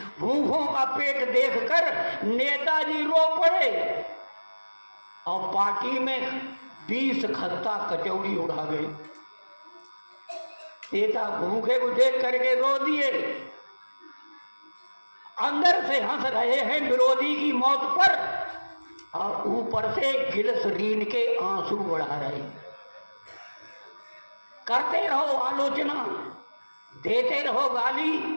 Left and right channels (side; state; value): both; inverted; correlation -1.00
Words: भूखों का पेट देखकर नेताजी रो पड़े और पार्टी में 20 खत्ता कचौड़ी उड़ा गए। नेता भूखे को देख करके रो दिए, अंदर से हंस रहे हैं विरोधी की मौत पर और ऊपर से ग्लिसरीन के आंसू बढ़ा रहे। करते रहो आलोचना, देते रहो गाली।